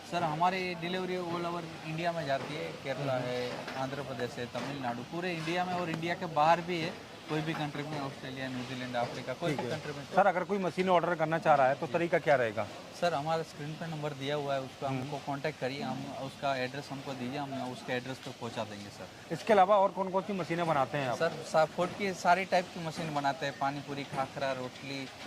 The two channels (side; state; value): both; identical; correlation 1.00